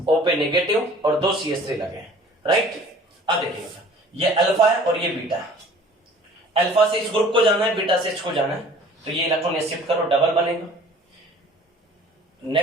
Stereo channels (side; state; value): both; normal; correlation 0.49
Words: O पे नेगेटिव, और 2 CH3 लगे हैं, राइट। अब देखिएगा, ये अल्फा है और ये बीटा है। अल्फा से इस ग्रुप को जाना है, बीटा से एच को जाना है, तो ये इलेक्ट्रॉन ये शिफ्ट करो, डबल बनेगा।